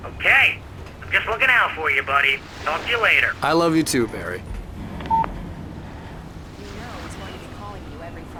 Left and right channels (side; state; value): both; identical; correlation 1.00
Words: Okay. I'm just looking out for you, buddy. Talk to you later. I love you too, Barry. You know he's going to be calling you every